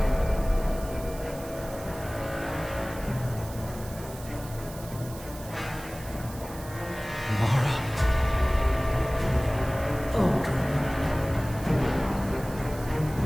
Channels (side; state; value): right; noise; hiss, 17 dB below the sound